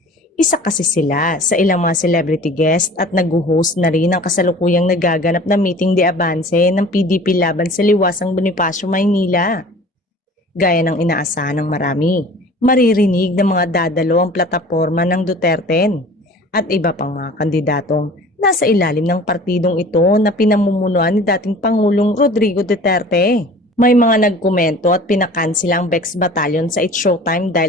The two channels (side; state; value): both; normal; correlation 0.44